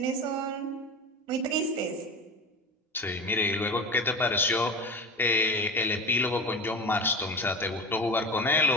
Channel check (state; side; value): normal; both; correlation 0.30